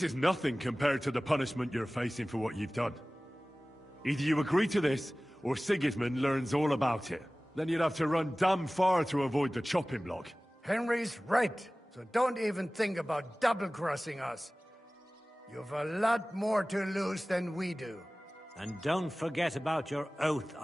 is nothing compared to the punishment you're facing for what you've done. Either you agree to this, or Sigismund learns all about it. Then you'd have to run damn far to avoid the chopping block. Henry's right, so don't even think about double-crossing us. You've a lot more to lose than we do. And don't forget about your oath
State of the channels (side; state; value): both; normal; correlation 0.98